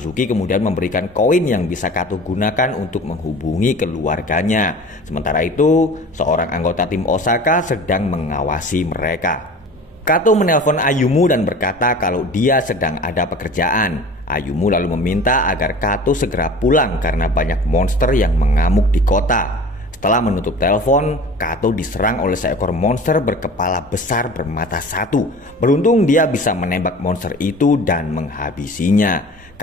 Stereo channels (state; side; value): normal; both; correlation 0.41